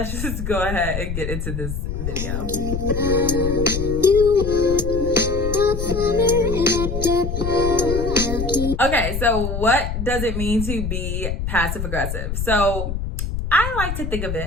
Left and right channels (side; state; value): left; noise; rumble, 4 dB below the sound